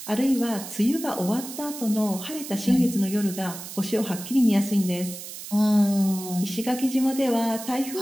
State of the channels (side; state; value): right; noise; hiss, 11 dB below the sound